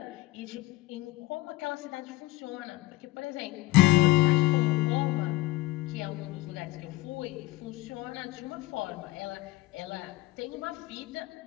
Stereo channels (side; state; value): right; quieter; 18.2 dB